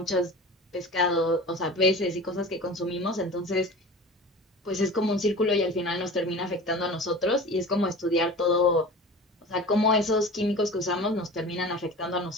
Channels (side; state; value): both; normal; correlation 0.36